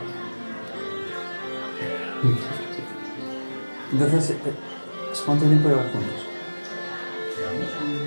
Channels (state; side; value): inverted; both; correlation -1.00